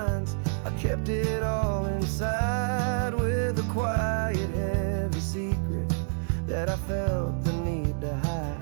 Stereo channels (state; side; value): silent; left; digital silence